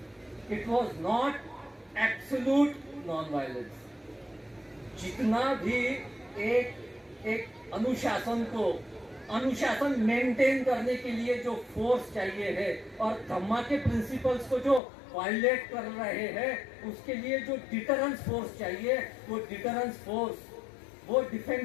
it was not absolute non violence. जितना भी एक अनुशासन मेंटेन करने के लिए जो फोर्स चाहिए है, और धम्मा के प्रिंसिपल्स को जो वायलेट कर रहे हैं, उसके लिए जो डिटरेंस फोर्स चाहिए, वो डिटरेंस फोर्स, वो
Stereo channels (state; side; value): drops out; right; at 14.8 s